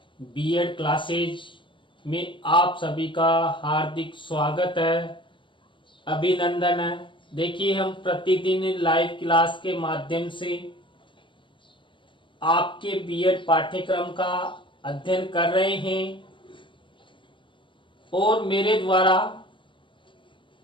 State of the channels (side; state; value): right; late; 0.24 ms